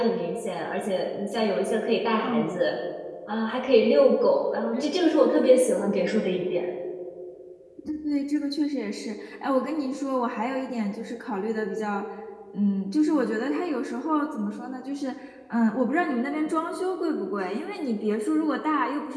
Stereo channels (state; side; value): identical; both; correlation 1.00